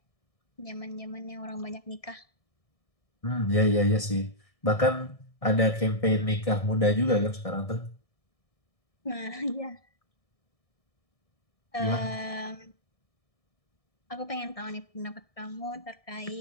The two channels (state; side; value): late; right; 1.6 ms